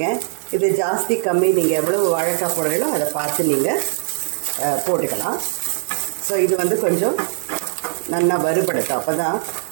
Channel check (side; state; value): left; silent; digital silence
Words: இது ஜாஸ்தி கம்மி, நீங்கள் எவ்வளோ வாழைக்காய் போடுறீங்களோ அதை பார்த்து நீங்கள் போட்டுக்கலாம். ஸோ இது வந்து கொஞ்சம் நல்லா வறுபடுத்தும். அப்போ தான்